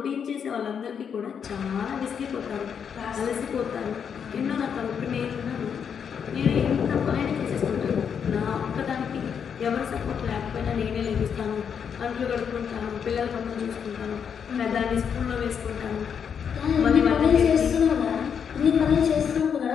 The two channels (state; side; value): quieter; right; 7.3 dB